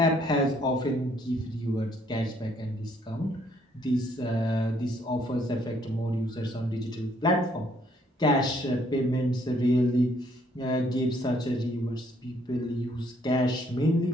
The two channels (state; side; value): normal; both; correlation 0.66